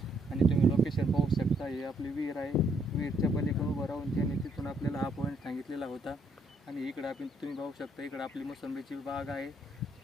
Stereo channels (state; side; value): normal; both; correlation 0.70